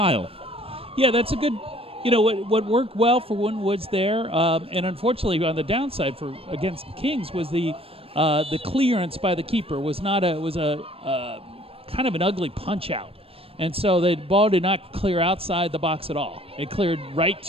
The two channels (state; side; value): late; left; 0.28 ms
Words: Yeah, that's a good. What worked well for Winton Woods there, and unfortunately on the downside for against Kings was the clearance by the keeper was a kind of an ugly punch out, and so the ball did not clear outside the box at all. It cleared right